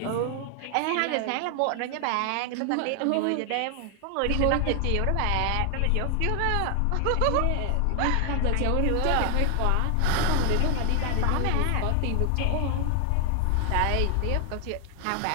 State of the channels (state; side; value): different; both; correlation 0.00